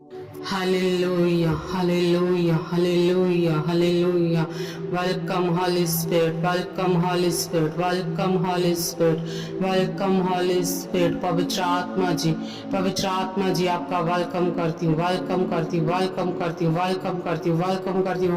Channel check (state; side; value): identical; both; correlation 1.00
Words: Hallelujah, hallelujah, hallelujah, hallelujah. Welcome, Holy Spirit, welcome, Holy Spirit, welcome, Holy Spirit, welcome, Holy Spirit. पवित्र आत्मा जी आपका welcome करती हूँ, welcome करती हूँ, वेलकम करती हूँ, वेलकम करती हूँ, वेलकम करती